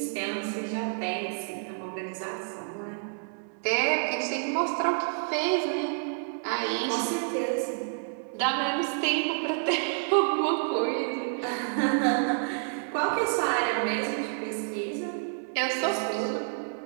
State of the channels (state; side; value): silent; left; digital silence